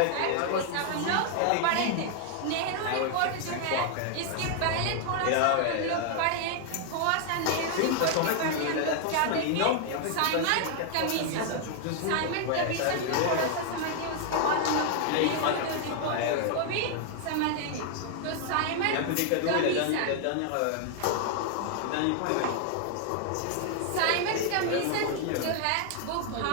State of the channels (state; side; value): different; both; correlation 0.00